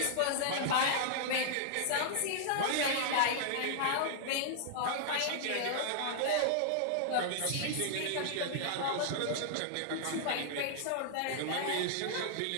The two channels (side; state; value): both; different; correlation -0.01